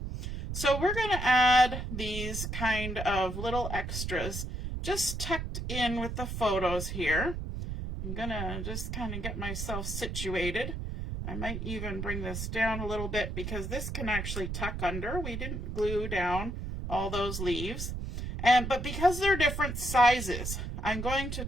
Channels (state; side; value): noise; right; rumble, 5 dB below the sound